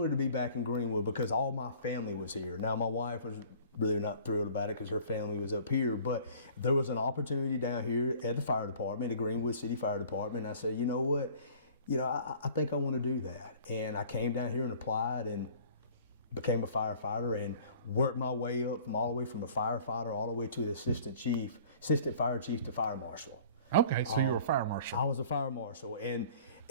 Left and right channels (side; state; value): both; inverted; correlation -0.50